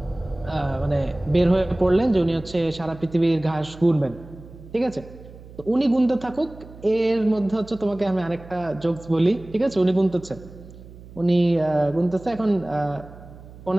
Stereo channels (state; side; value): noise; right; hum, 18 dB below the sound